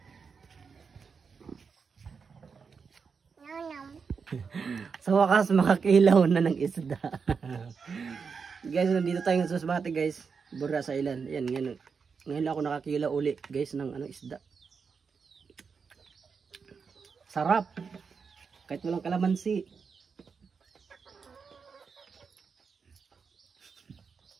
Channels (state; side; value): quieter; left; 5.6 dB